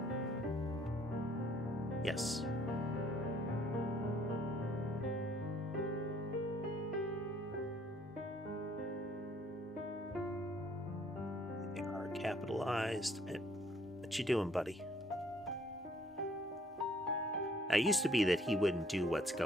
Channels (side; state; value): both; normal; correlation 0.62